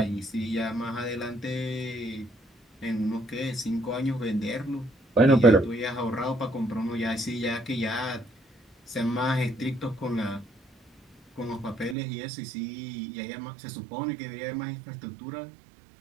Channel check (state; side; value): drops out; left; at 12.0 s